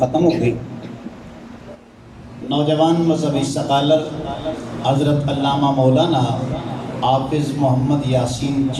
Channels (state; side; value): identical; both; correlation 1.00